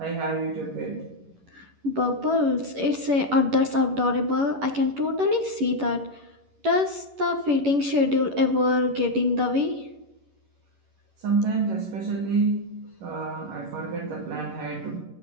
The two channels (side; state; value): left; late; 11 ms